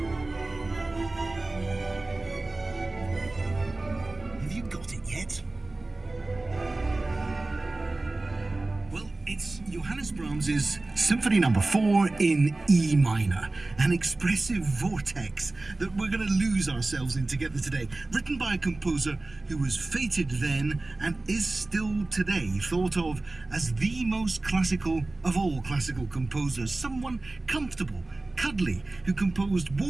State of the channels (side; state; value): left; quieter; 3.1 dB